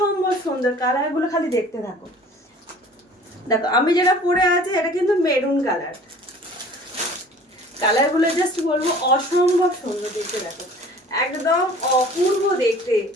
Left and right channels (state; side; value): normal; both; correlation 0.47